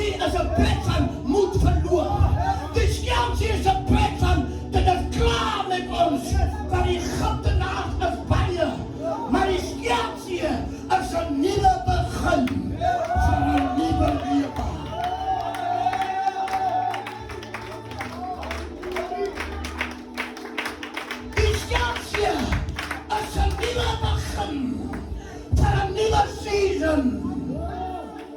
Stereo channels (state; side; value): identical; both; correlation 1.00